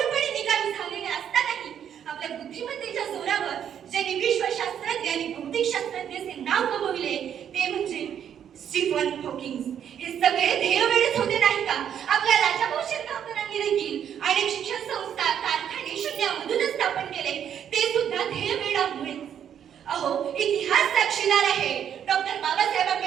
निकामी झालेले असतानाही आपल्या बुद्धिमत्तेच्या जोरावर ज्यांनी विश्वशास्त्रज्ञ आणि भौतिक शास्त्रज्ञाचे नाव कमविले ते म्हणजे स्टीफन हॉकिंग. हे सगळे ध्येयवेळेच होते नाही का? आपल्या राजाभाऊ शिरगावकरांनी देखील अनेक शिक्षण संस्था, कारखाने शून्यामधूनच स्थापन केले, ते सुद्धा ध्येयवेळामुळे. अहो, इतिहास साक्षीदार आहे. डॉक्टर बाबासाहेब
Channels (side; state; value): left; quieter; 9.1 dB